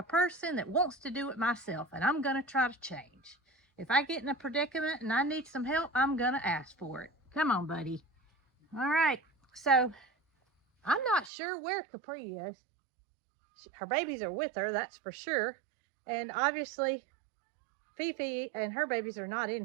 person that wants to do it myself, and I'm going to try to change. If I get in a predicament and I need some help, I'm going to ask for it. Come on, buddy. All right, so I'm not sure where Capri is. Her babies are with her, that's for sure. And obviously, Fifi and her babies are not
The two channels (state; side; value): drops out; left; at 11.3 s